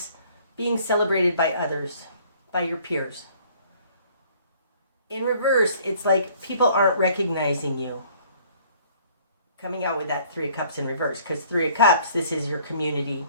being celebrated by others, by your peers. In reverse, it's like people aren't recognizing you. Coming out with that Three of Cups in reverse. Because Three of Cups, this is your community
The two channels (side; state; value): both; inverted; correlation -0.57